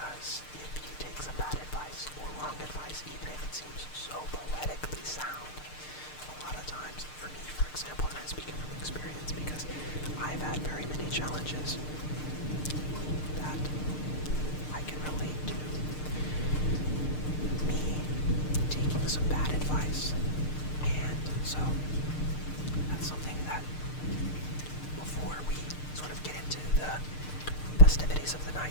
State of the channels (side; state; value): right; late; 6.6 ms